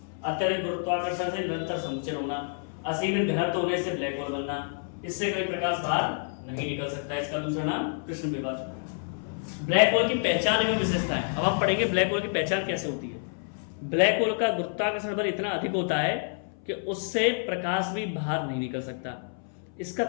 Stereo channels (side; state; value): right; silent; 59 dB below the other